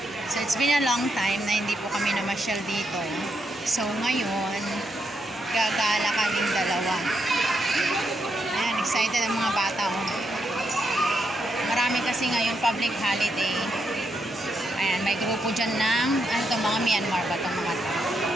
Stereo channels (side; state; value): both; normal; correlation 0.81